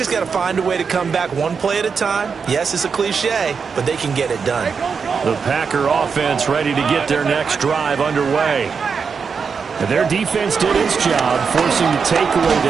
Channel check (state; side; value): quieter; left; 5.8 dB